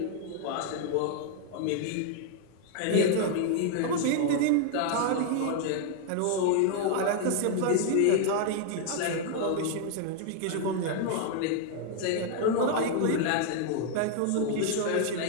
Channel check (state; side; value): different; both; correlation 0.00